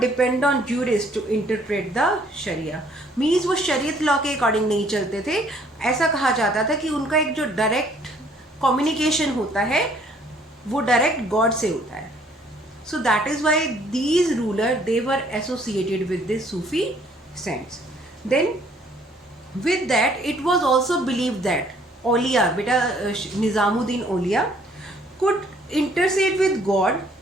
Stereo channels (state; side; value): normal; both; correlation 0.62